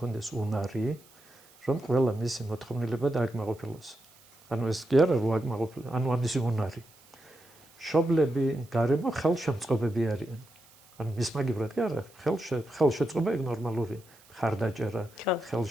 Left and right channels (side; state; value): right; noise; hiss, 27 dB below the sound